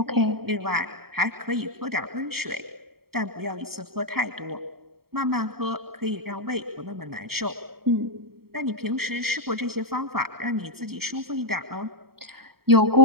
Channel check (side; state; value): left; late; 0.95 ms